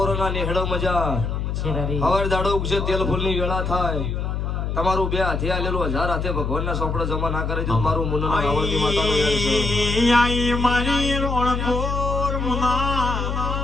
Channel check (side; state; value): left; noise; hum, 2 dB below the sound